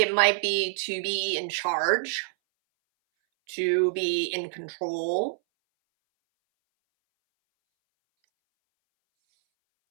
might be to be in charge, to be in control,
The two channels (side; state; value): left; silent; 59 dB below the other